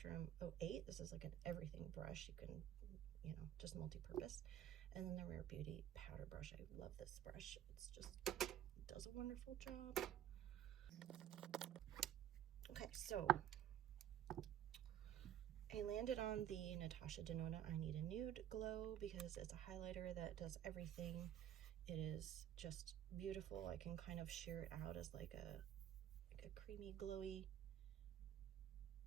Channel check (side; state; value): left; quieter; 11.0 dB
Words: 08. This is like an everything brush. You can, you know, just multi-purpose. And then the Rare Beauty powder brush. I love this brush. It's just, it does a wonderful job. Okay, so I landed on the Natasha Denona I Need a Nude Glow because it's a highlighter that does everything. It is just beautiful. I can kind of sheer it out as like a creamy, glowy,